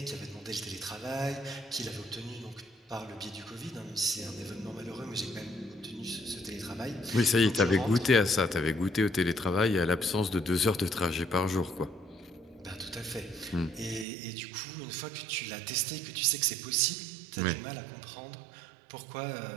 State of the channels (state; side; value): drops out; left; at 14.1 s